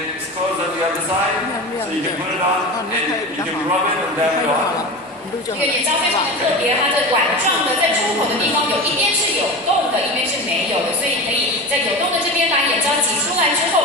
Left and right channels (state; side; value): normal; both; correlation 0.28